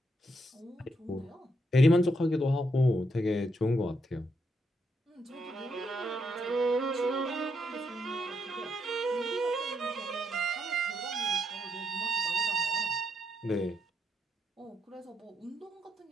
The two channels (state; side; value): normal; both; correlation 0.79